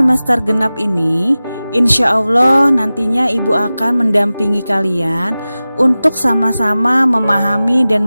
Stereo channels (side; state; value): both; inverted; correlation -0.96